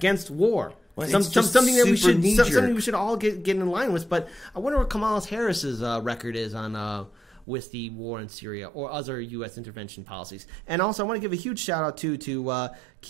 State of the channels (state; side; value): drops out; left; at 7.5 s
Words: war. Well, something that we should all get in line with. But I wonder what Kamala Harris's record is on with the war in Syria or other U.S. intervention policies. And also, I want to give a huge shout out to